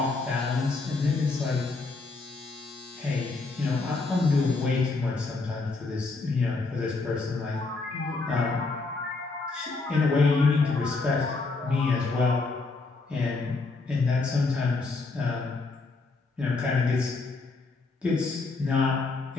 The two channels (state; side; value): quieter; right; 3.8 dB